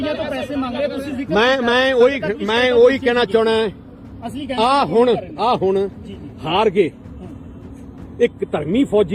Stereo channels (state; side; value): identical; both; correlation 1.00